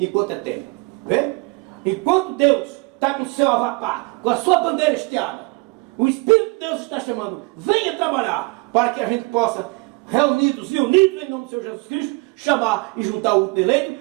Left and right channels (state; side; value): quieter; left; 27.3 dB